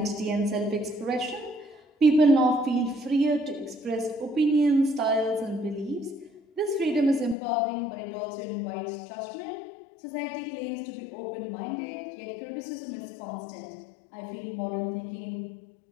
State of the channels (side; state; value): right; drops out; at 7.4 s